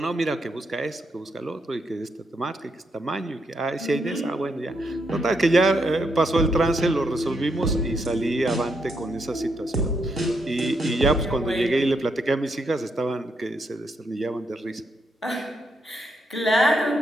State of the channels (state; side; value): normal; both; correlation 0.79